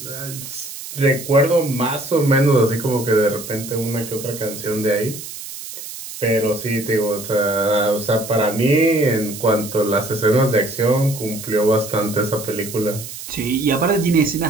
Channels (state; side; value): noise; right; hiss, 11 dB below the sound